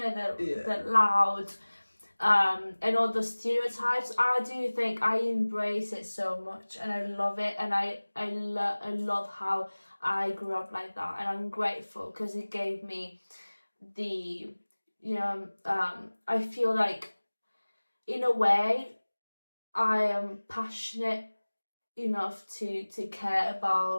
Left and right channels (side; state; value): both; inverted; correlation -1.00